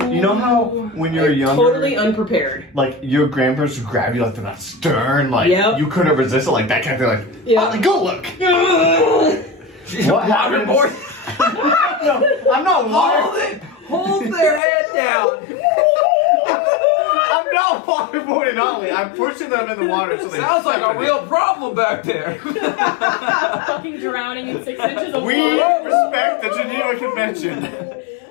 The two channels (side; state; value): right; drops out; at 14.6 s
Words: you know how when you're younger, Totally unprepared. like your grandparents would grab you like they're not stern, like Yep. you couldn't resist it, like that kind of thing, like, Yeah. Otley, go look. She's What waterboard. No, I'm not water. Hold their head down. I'm not waterboarding Otley. I'm pushing them in the water so they. Sounds like a real problem back there. Fucking drowning in 6 inches of We water. respect the Geneva Convention.